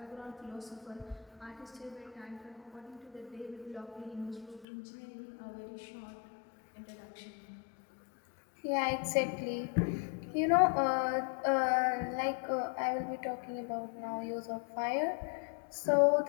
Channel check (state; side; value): drops out; right; at 4.7 s